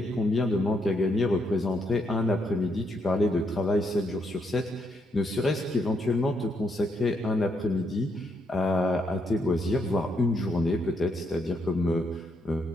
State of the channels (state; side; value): normal; both; correlation 0.76